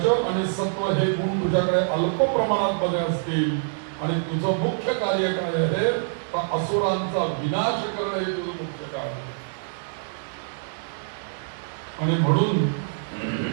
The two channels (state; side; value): silent; left; 61 dB below the other